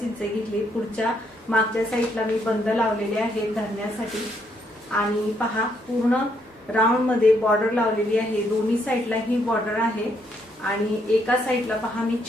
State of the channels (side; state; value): both; normal; correlation 0.73